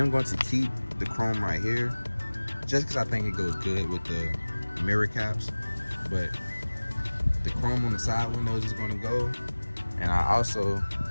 going to keep the chrome right here just because I think it goes good with the mirror caps. But the chrome on the side windows is going to go, and I also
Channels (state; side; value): inverted; both; correlation -1.00